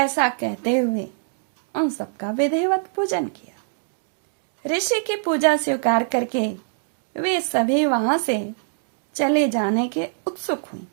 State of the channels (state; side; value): silent; left; digital silence